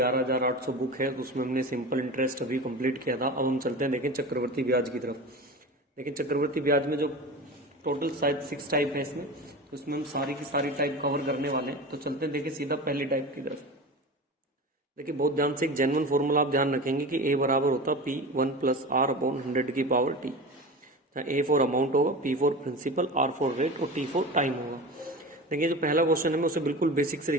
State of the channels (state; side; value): normal; both; correlation 0.30